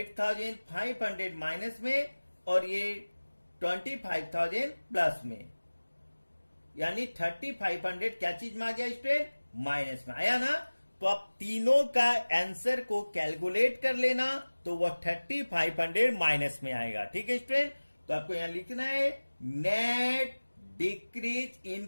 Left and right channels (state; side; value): inverted; both; correlation -1.00